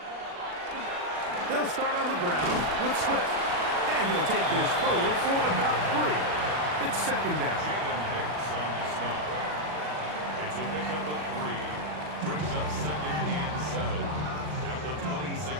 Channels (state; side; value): late; left; 40 ms